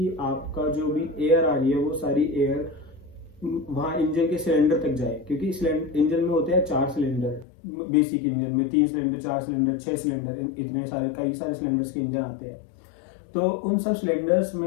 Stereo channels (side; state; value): right; drops out; at 7.5 s